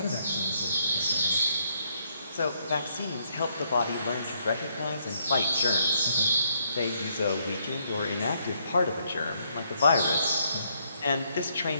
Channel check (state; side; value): inverted; both; correlation -0.72